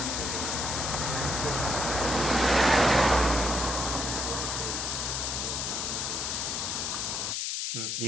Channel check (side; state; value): left; noise; hiss, 1 dB below the sound